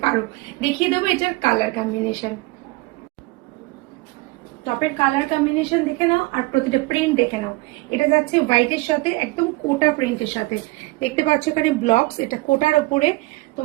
পারো। দেখিয়ে দেবো এটার কালার কম্বিনেশন। টপের কালার কম্বিনেশন দেখে নাও আর প্রতিটা প্রিন্ট দেখে নাও। এটা যাচ্ছে হোয়াইটের সাথে একদম কোটা প্রিন্টের সাথে। দেখতে পাচ্ছ এখানে ব্লকস, এটা কোটার ওপরে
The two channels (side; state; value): left; quieter; 22.1 dB